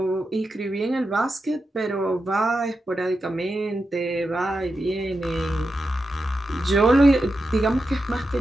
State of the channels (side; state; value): both; normal; correlation 0.89